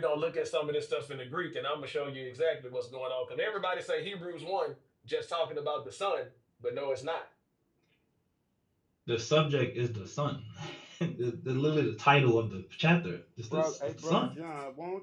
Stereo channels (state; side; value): identical; both; correlation 1.00